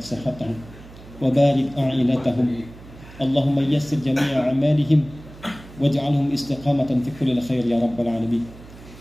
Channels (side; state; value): right; noise; hum, 19 dB below the sound